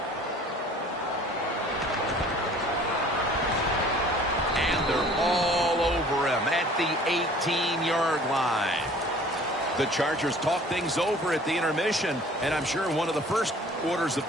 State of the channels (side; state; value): both; normal; correlation 0.50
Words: And they're all over him at the 18-yard line. The Chargers talk things over at the intermission, and I'm sure one of the first orders of